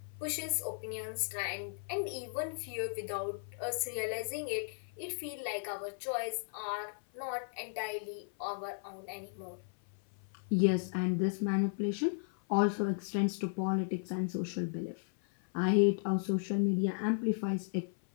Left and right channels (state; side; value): silent; right; 54 dB below the other